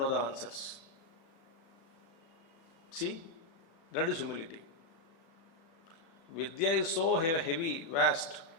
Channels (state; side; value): late; right; 36 ms